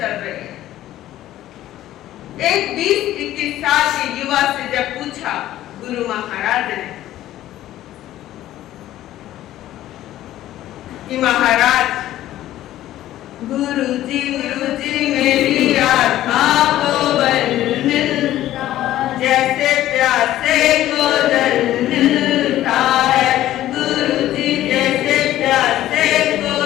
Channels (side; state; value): right; quieter; 13.8 dB